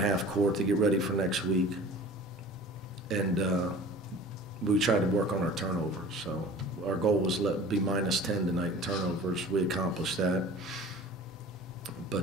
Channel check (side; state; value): both; normal; correlation 0.43